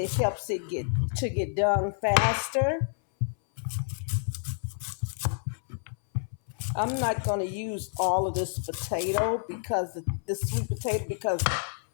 helps it get done faster. I'm not going to use all of this potato because this sweet potato because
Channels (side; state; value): right; silent; 59 dB below the other